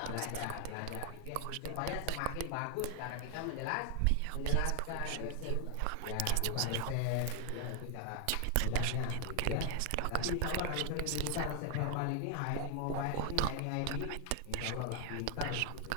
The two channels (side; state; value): both; different; correlation 0.01